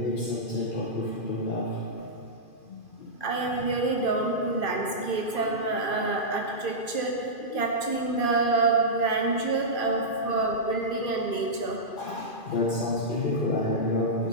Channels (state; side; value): late; right; 2.5 ms